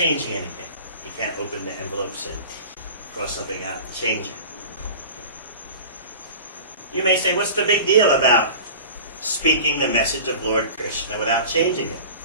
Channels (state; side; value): inverted; both; correlation -0.38